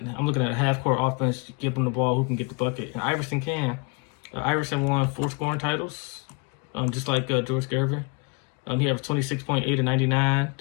looking at a half court offense, give them the ball, who can get the bucket. And Iverson can. Iverson won 4 scoring titles, just like George Gervin. He averaged 26.8 and 99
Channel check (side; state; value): right; quieter; 31.5 dB